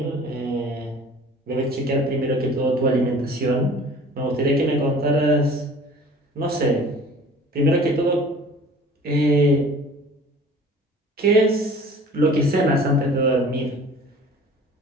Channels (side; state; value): both; normal; correlation 0.46